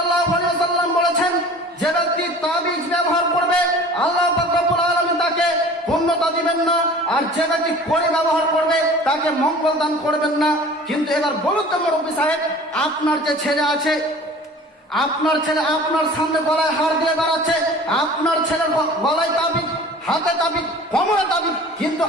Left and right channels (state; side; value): normal; both; correlation 0.44